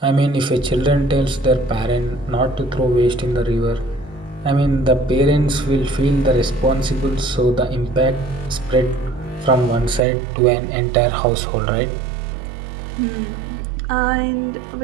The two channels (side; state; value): left; drops out; at 10.0 s